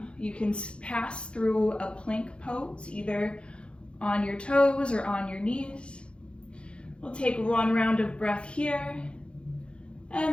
you can pass through a plank pose, either on your toes or on your knees. We'll take 1 round of breath here,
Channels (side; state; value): right; late; 0.057 ms